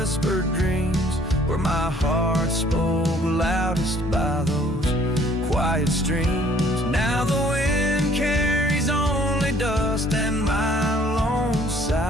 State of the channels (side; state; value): both; normal; correlation 0.59